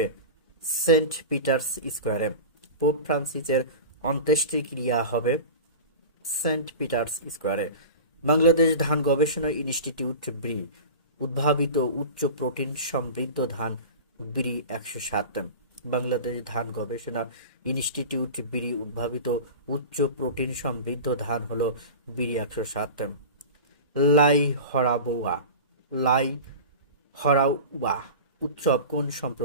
সেন্ট পিটার্স স্কোয়ারে। পোপ ফ্রান্সিসের অন্ত্যেষ্টিক্রিয়া হবে সেন্ট পিটার্স স্কোয়ারে। বাংলাদেশ ধান গবেষণা ইনস্টিটিউট ব্রি উদ্ভাবিত উচ্চ প্রোটিন সমৃদ্ধ ধান ব্রি 107। বাংলাদেশ ধান গবেষণা ইনস্টিটিউট ব্রি উদ্ভাবিত উচ্চ প্রোটিন সমৃদ্ধ ধান হলো ব্রি 107। লাই হরাউবা উৎসব কোন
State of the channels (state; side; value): inverted; both; correlation -0.32